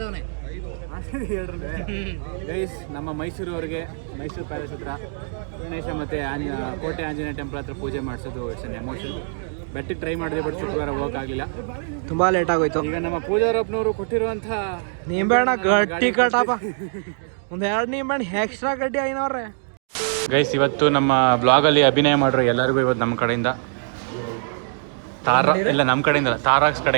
ಗೈಸ್, ನಮ್ಮ ಮೈಸೂರವ್ರಿಗೆ ಮೈಸೂರು ಪ್ಯಾಲೇಸ್ ಹತ್ರ ಗಣೇಶ ಮತ್ತು ಕೋಟೆ ಆಂಜನೇಯ ಟೆಂಪಲ್ ಹತ್ರ ಪೂಜೆ ಮಾಡಿಸೋದು ಇಟ್ಸ್ ಅನ್ ಎಮೋಷನ್. ಬೆಟ್ಟಿಗೆ ಟ್ರೈ ಮಾಡಿದೆ, ಬಟ್ ಶುಕ್ರವಾರ ಹೋಗೋಕ್ಕಾಗಲಿಲ್ಲ, ತುಂಬಾ ಲೇಟ್ ಆಗೋಯ್ತು. ಈಗ ನಮ್ಮ ಪೂಜಾರಪ್ಪನವರು ಕೊಟ್ಟಿರುವಂಥ ನಿಂಬೆಹಣ್ಣ ಗಟ್ಟಿ ಕಟ್ಟಪ್ಪ, ಒಂದು 2 ನಿಂಬೆಹಣ್ಣು ಎಕ್ಸ್ಟ್ರಾ ಗಡ್ಡಿ ಐನವ್ರೆ. ಗೈಸ್, ಇವತ್ತು ನಮ್ಮ ಬ್ಲಾಗಲ್ಲಿ ಅಭಿನಯ ಮಾಡಿರೋ ಎಲ್ಲರಿಗೂ ಇವತ್ತು ನಮ್ಮ ಕಡೆಯಿಂದ ತಾರಾಕ್ಸ್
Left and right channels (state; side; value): silent; left; digital silence